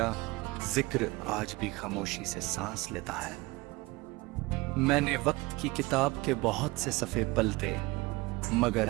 जिक्र आज भी खामोशी से सांस लेता है। मैंने वक्त की किताब के बहुत से सफ़े पलटे, मगर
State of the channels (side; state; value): left; quieter; 22.3 dB